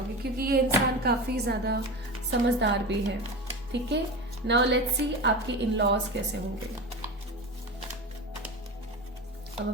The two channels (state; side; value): normal; both; correlation 0.26